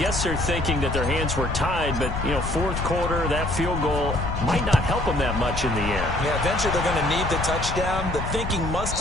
they're thinking that their hands were tied, but, you know, 4th quarter, that field goal might not help them that much in the end. Yeah, eventually they're going to need the touchdown. The thinking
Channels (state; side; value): noise; left; rumble, 5 dB below the sound